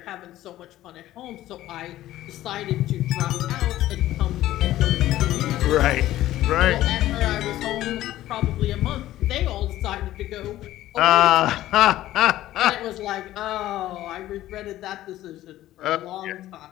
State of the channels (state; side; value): quieter; right; 14.5 dB